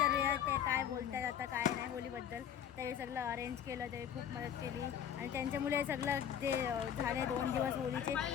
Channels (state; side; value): quieter; right; 9.1 dB